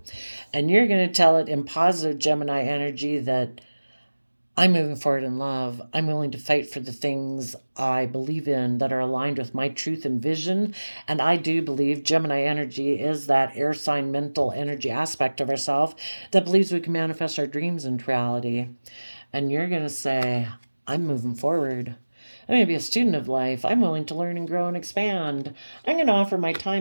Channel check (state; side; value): inverted; both; correlation -1.00